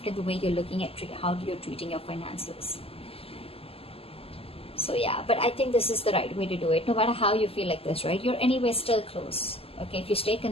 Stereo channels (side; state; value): right; late; 0.28 ms